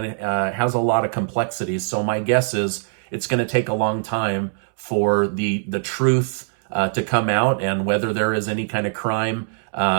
it has a lot of complexities. So my guess is it's going to take a long time for the truth to come out and whether there is any kind of crime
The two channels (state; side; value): silent; left; 64 dB below the other